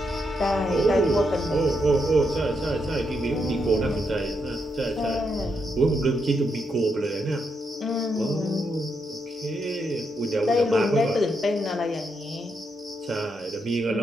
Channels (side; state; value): both; normal; correlation 0.81